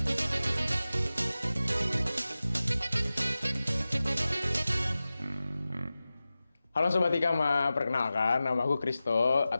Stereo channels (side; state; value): both; inverted; correlation -0.95